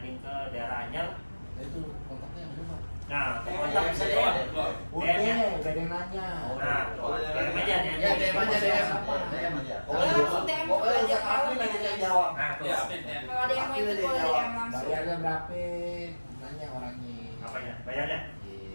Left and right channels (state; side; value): inverted; both; correlation -1.00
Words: ke daerah Anyar. Nah itu kontaknya yang mana? Nah, kontak bisa deh. Udah, DM-nya. gak ada yang nanya. Nah, DM aja DM. Ya, DM aja, DM. DM aja. Pokoknya langsung DM ke belajar helm nanti ya. yang jawab. Nah, tuh. Ya, amin ya. Kalau ada yang mau ikut boleh DM langsung. Bayarnya berapa? Nanya orangnya. Apanya? Bayarnya?